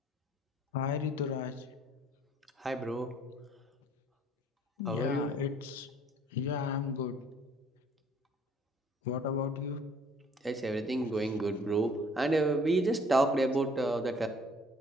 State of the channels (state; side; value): normal; both; correlation 0.57